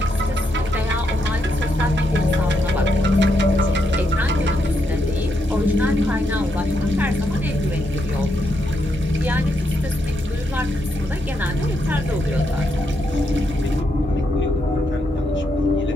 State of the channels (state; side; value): normal; both; correlation 0.80